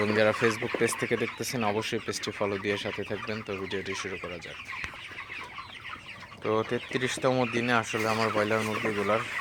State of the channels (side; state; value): both; identical; correlation 1.00